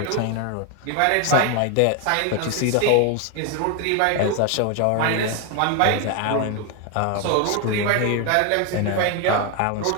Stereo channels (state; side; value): different; both; correlation 0.01